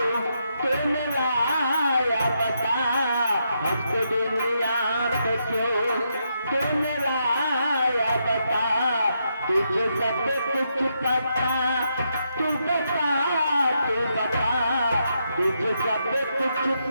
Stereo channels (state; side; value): inverted; both; correlation -0.80